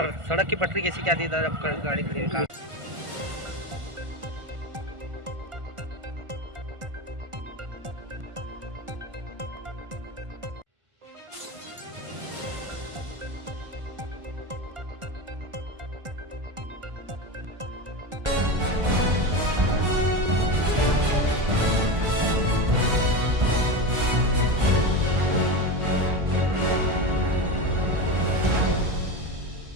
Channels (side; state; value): left; late; 1.4 ms